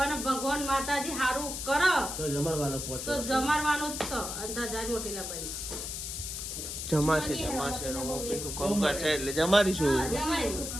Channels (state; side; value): noise; left; hiss, 5 dB below the sound